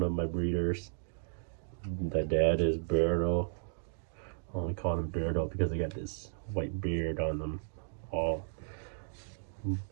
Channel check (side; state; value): left; silent; 55 dB below the other